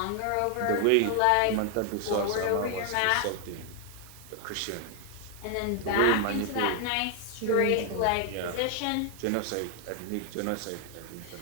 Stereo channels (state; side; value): different; both; correlation 0.00